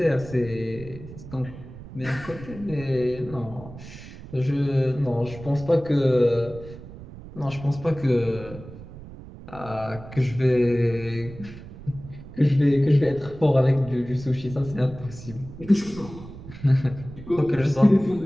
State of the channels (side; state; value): right; noise; rumble, 15 dB below the sound